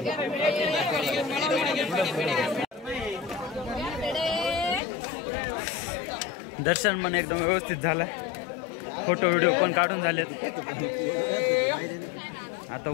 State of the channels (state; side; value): drops out; right; at 4.8 s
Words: दर्शन पण एकदम व्यवस्थित झालंय. फोटो व्हिडिओ पण काढून झालेत. आता